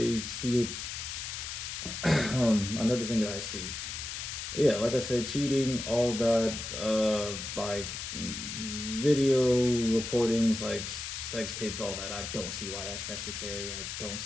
see it another thing that I see, yeah, like I said, cheating, all that, like video recordings, like sex tapes, all that. I don't see why that's necessary. I don't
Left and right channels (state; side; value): noise; left; hiss, 6 dB below the sound